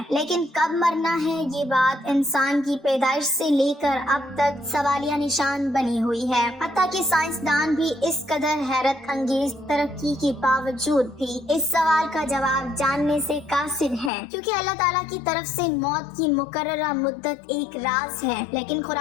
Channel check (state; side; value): drops out; right; at 14.1 s